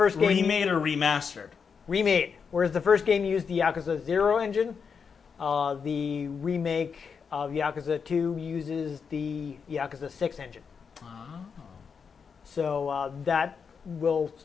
game Remade or remastered? remade, whereas the first game used the Yakuza 0 engine, the remake of Yakuza 2 uses the Yakuza 6 engine. Oh. So that will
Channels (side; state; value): right; quieter; 6.1 dB